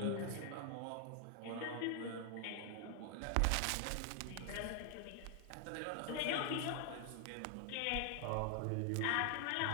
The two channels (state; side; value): different; both; correlation 0.00